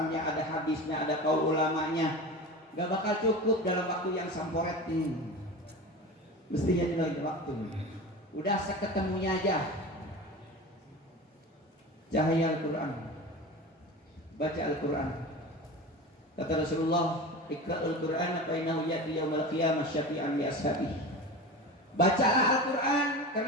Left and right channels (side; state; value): both; normal; correlation 0.31